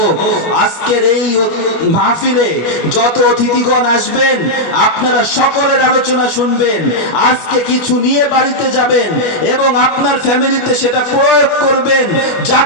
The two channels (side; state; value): right; late; 25 ms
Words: আজকের এই মাহফিলে যত অতিথিগণ আসবেন আপনারা সকলের আলোচনা শুনবেন, আজকে কিছু নিয়ে বাড়িতে যাবেন এবং আপনার ফ্যামিলিতে সেটা প্রয়োগ করবেন,